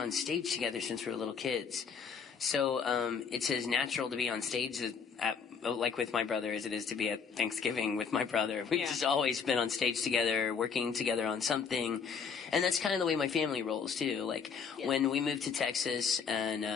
stage together since we were little kids. So it's as natural to be on stage like with my brother as it is to be at Thanksgiving with my brother. We've just always been on stage together, working together on something. And that's kind of the way my family rolls too. Like when we moved to Texas and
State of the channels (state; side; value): quieter; right; 6.2 dB